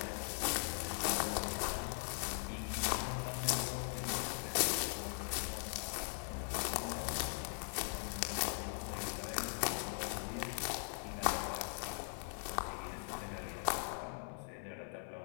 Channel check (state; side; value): silent; right; 51 dB below the other